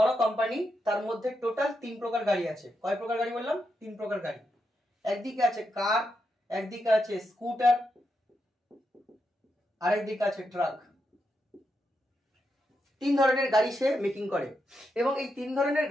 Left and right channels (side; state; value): both; normal; correlation 0.84